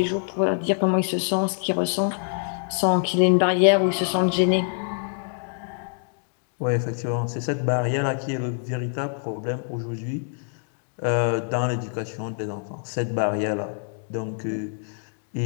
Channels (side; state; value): right; silent; digital silence